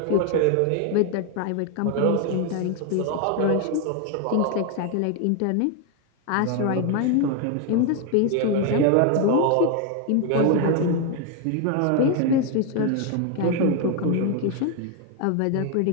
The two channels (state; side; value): different; both; correlation 0.00